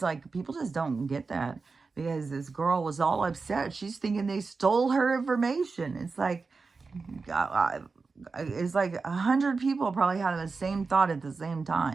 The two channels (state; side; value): quieter; left; 4.4 dB